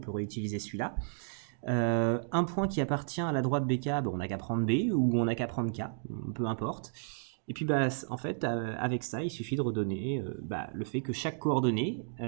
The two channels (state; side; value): silent; left; digital silence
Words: réutiliser celui-là. Un point qui appartient à la droite BK, on n'a qu'à prendre B ou on n'a qu'à prendre K, peu importe. Et puis en fait, avec ça, il suffit de redonner le fait que chaque coordonnée